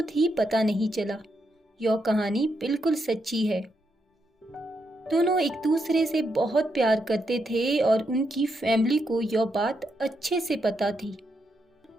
ही पता नहीं चला। यह कहानी बिल्कुल सच्ची है। दोनों एक दूसरे से बहुत प्यार करते थे और उनकी फैमिली को यह बात अच्छे से पता थी।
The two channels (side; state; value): both; normal; correlation 0.81